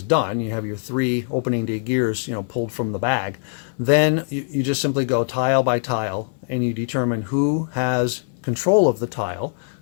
done, you have your 3 opening day gears, pulled from the bag. Then you just simply go tile by tile, and you determine who has control of the tile.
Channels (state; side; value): silent; right; 59 dB below the other